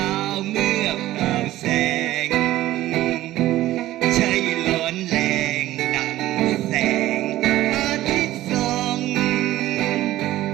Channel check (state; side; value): quieter; left; 15.2 dB